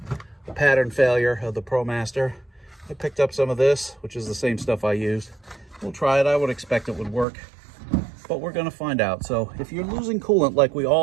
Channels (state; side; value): drops out; left; at 7.2 s